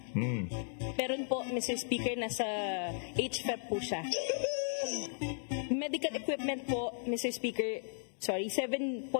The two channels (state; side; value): silent; right; digital silence